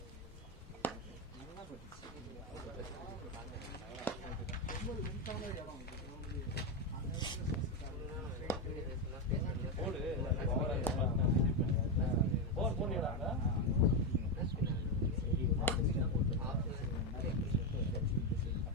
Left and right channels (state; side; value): normal; both; correlation 0.09